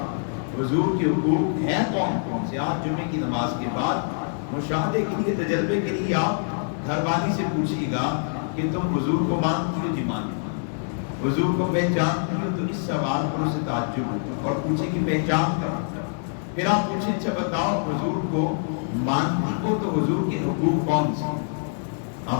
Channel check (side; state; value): right; silent; digital silence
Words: حضور کے حقوق ہیں کون کون سے۔ آج جمعے کی نماز کے بعد مشاہدے کے لیے، تجربے کے لیے آپ گھر والی سے پوچھیے گا کہ تم حضور کو مانتی ہو؟ جی مانتی ہو۔ حضور کو پہچانتی ہو؟ تو اس سوال پر اسے تعجب ہوگا اور پوچھے کہ پہچان کر، پھر آپ پوچھیں اچھا بتاؤ حضور کو مانتی ہو تو حضور کے حقوق کون سے